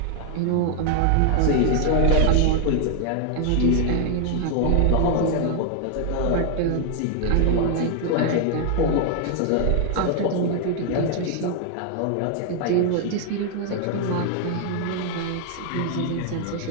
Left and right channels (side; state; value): both; different; correlation 0.00